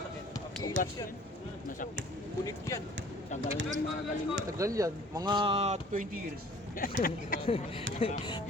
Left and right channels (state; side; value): normal; both; correlation 0.51